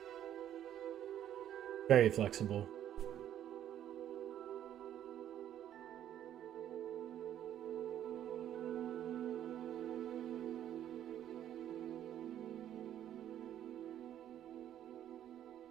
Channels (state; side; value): quieter; left; 10.9 dB